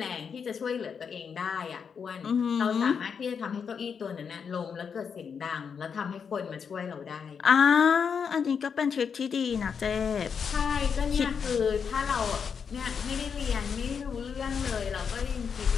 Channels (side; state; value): right; quieter; 6.6 dB